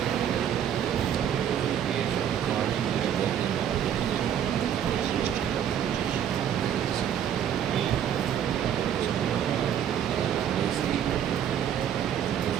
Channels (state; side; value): quieter; left; 9.4 dB